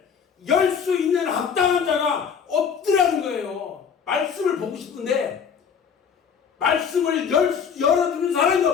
열 수 있는 합당한 자가 없더라는 거예요. 말씀을 보고 싶은데 말씀을 열어주는 사람이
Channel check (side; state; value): right; quieter; 6.9 dB